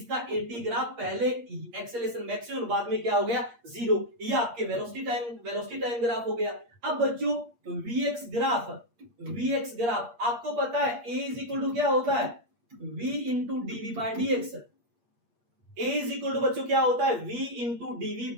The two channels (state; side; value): late; left; 8.5 ms